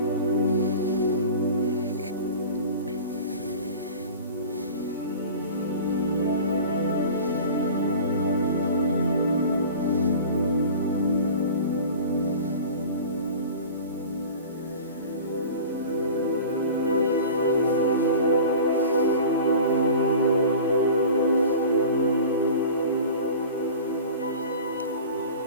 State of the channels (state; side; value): inverted; both; correlation -0.38